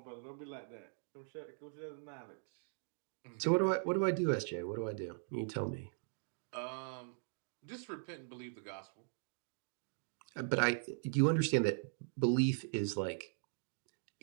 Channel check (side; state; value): left; silent; digital silence